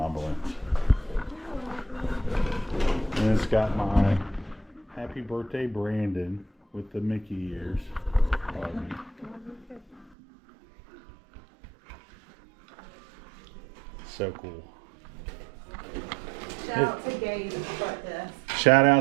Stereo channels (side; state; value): left; drops out; at 10.1 s